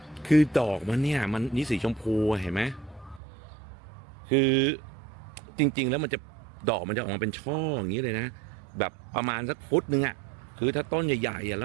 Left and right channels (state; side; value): drops out; left; at 3.2 s